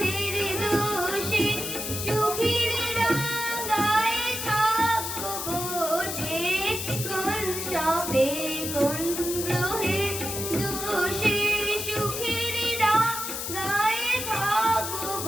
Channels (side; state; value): left; noise; hiss, 4 dB below the sound